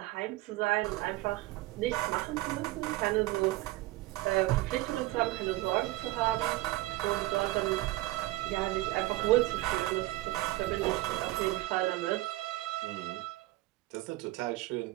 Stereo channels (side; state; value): left; quieter; 18.7 dB